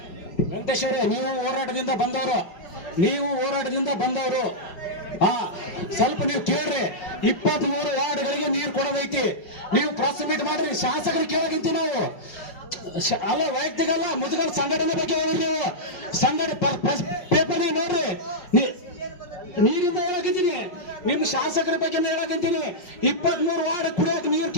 ವೆಂಕಟೇಶ್ ಅವರೇ, ನೀವು ಹೋರಾಟದಿಂದ ಬಂದವರು ಸ್ವಲ್ಪ ನೀವು ಕೇಳ್ರಿ. 23 ವಾರ್ಡ್ಗಳಿಗೆ ನೀರು ಕೊಡೋದೈತಿ, ನೀವು ಪ್ರೆಸ್ ಮೀಟ್ ಮಾಡ್ರಿ, ಶಾಸಕರಿಗೆ ಕೇಳೋದಿಂತಿ ನಾವು ಅಲ್ಲ, ವೈಯಕ್ತಿಕ ಅಲ್ಲ, ಮುದುಗಲ್ ಸಂಘಟನೆ ಬಗ್ಗೆ ಹೋಗ್ರಿ. ನೀವು ಪೇಪರ್ ನೋಡ್ರಿ, ನೀರಿಂದ ಹೇಳಕಂತೀನಿ, ನಿಮ್ಮ ಶಾಸಕರ ಬಗ್ಗೆ ಹೇಳಕಂತೀನಿ. 23 ವಾರ್ಡ್ ಕುಡಿಯೋಕೆ ನೀರು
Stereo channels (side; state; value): right; late; 5.1 ms